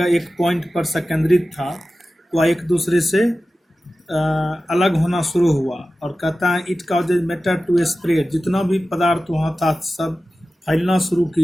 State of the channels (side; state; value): both; normal; correlation 0.95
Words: एक पॉइंट पर संकेंद्रित था वह एक दूसरे से अलग होना शुरू हुआ। और कहता है it causes matter to spread, जितना भी पदार्थ वहाँ था सब फैलना शुरू